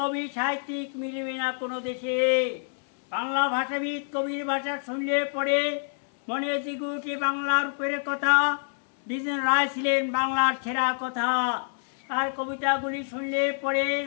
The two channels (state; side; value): silent; right; 60 dB below the other